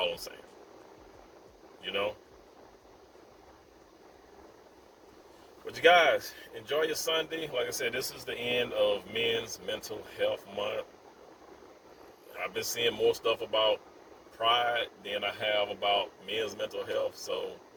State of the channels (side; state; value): both; identical; correlation 1.00